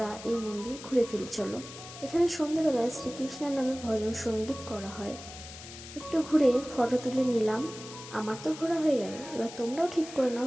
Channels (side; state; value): left; noise; hiss, 14 dB below the sound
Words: এই মন্দির ঘুরে ফিরি। চলো, এখানে সন্ধ্যেবেলায় শ্রীকৃষ্ণের নামে ভজন সঙ্গীত করা হয়। একটু ঘুরে ফটো তুলে নিলাম। আমার তো ঘোরা হয়ে গেল, এবার তোমরাও ঠিক করে